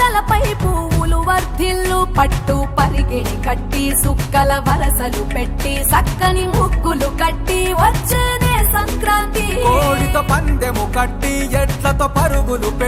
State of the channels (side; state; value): both; identical; correlation 1.00